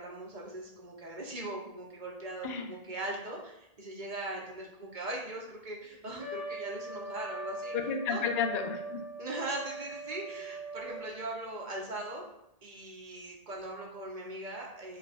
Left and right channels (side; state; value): left; late; 1.8 ms